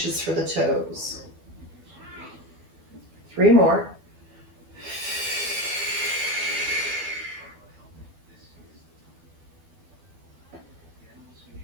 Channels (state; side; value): late; left; 12 ms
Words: for the toes. 3 more.